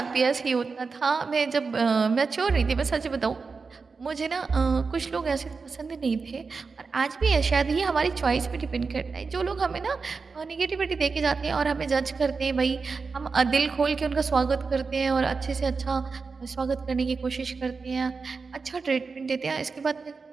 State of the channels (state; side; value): quieter; left; 4.7 dB